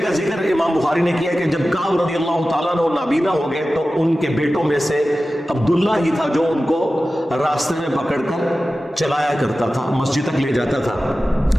کا ذکر امام بخاری نے کیا کہ جب کعب رضی اللہ تعالیٰ عنہ نابینا ہو گئے تو ان کے بیٹوں میں سے عبداللہ ہی تھا جو ان کو راستے میں پکڑ کر چلایا کرتا تھا, مسجد تک لے جاتا تھا.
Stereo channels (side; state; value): both; normal; correlation 0.95